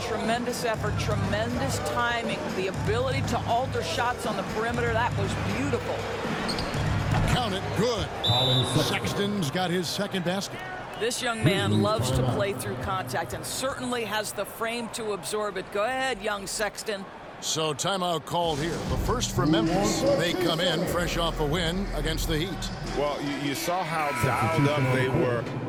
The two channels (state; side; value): identical; both; correlation 1.00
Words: tremendous effort, tremendous timing. The ability to alter shots on the perimeter, that was beautiful. Count it, good. Sexton's got his second basket. This young man loves to play through contact and certainly has the frame to absorb it. Go ahead, young Sexton. So timeout called here. The first for Memphis. They come in fresh off a win against the Heat. Well, you saw how dialed up they were.